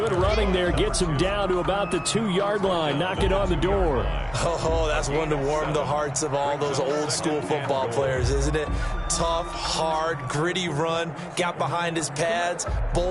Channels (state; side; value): identical; both; correlation 1.00